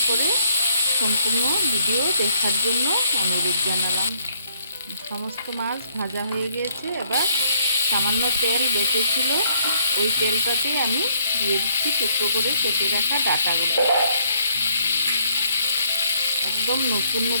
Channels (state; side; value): inverted; both; correlation -0.67